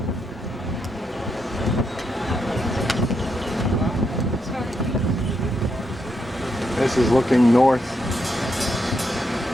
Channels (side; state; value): both; normal; correlation 0.80